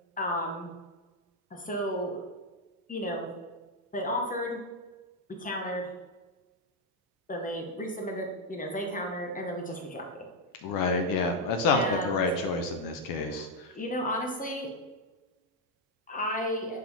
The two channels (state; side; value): normal; both; correlation 0.01